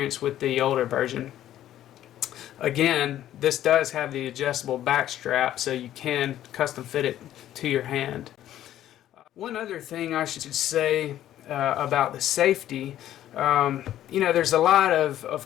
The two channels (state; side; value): quieter; right; 12.3 dB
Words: with the older version. Again, this does have the adjustable back strap, so you can custom fit it to your hand. One other thing I should say about the safety, there's a lot of